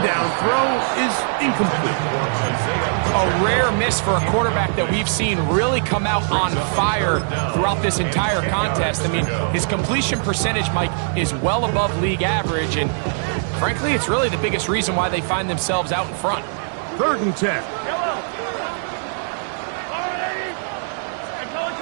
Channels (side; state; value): left; silent; digital silence